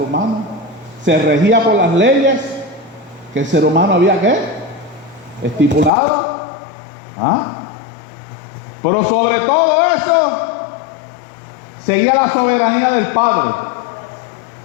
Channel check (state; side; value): drops out; right; at 5.9 s